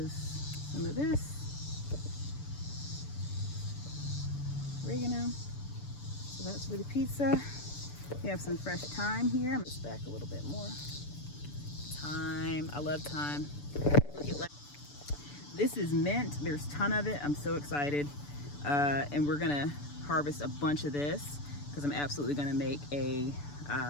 some of this. Oregano. So that's for the pizza. We have some fresh thyme here. I'm gonna stack a little bit more. Thyme, I love thyme. Look at this is mint. There's a ton of it. I'm so excited. And we're gonna harvest a bunch of this because I'm absolutely gonna make a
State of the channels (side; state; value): right; late; 6.9 ms